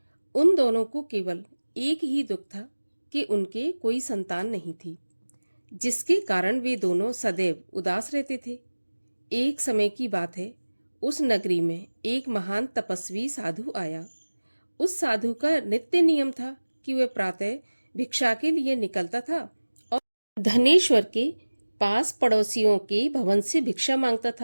उन दोनों को केवल एक ही दुख था कि उनके कोई संतान नहीं थी, जिसके कारण वे दोनों सदैव उदास रहते थे। एक समय की बात है, उस नगरी में एक महान तपस्वी साधु आया। उस साधु का नित्य नियम था कि वह प्रातः भिक्षा के लिए निकलता था और धनेश्वर के पास पड़ोसियों के भवन से भिक्षा मांगता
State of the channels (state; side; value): inverted; both; correlation -1.00